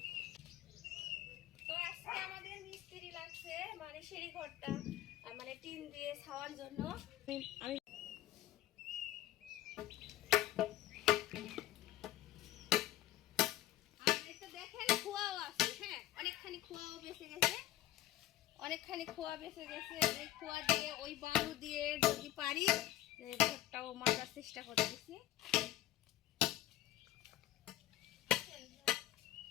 তো আজকে আমাদের মিস্ত্রি লাগছে, মানে সিঁড়ি ঘরটা মানে টিন দিয়ে ছাওয়ার জন্য। আমি দেখেন খোয়াও আছে। হ্যাঁ, অনেকখানি খোয়াও বেঁচে গেছে, অনেকখানি খোয়া বেঁচে গেছে। ওই খোয়া দিয়ে ওই বালু দিয়ে যদি পারি ঘরটাও মারার চেষ্টা করতেছি।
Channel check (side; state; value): right; quieter; 14.4 dB